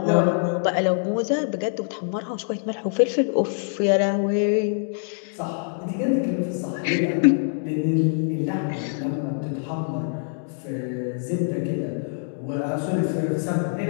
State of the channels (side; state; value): right; silent; digital silence